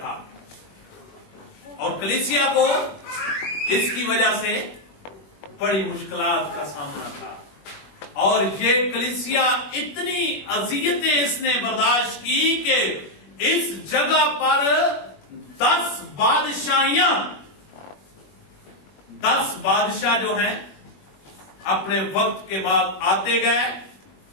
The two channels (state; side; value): late; right; 21 ms